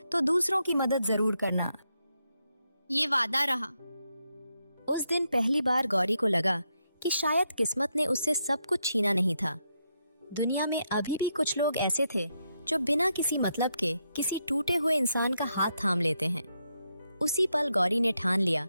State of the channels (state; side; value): inverted; both; correlation -0.81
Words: तो दूसरों की मदद जरूर करना। ये वादा रहा। उस दिन पहली बार गौरी को लगा कि शायद किस्मत ने उससे सब कुछ छीना नहीं था। दुनिया में अभी भी कुछ लोग ऐसे थे जो बिना किसी मतलब के किसी टूटे हुए इंसान का हाथ थाम लेते हैं। उसी पल गौरी ने ठान लिया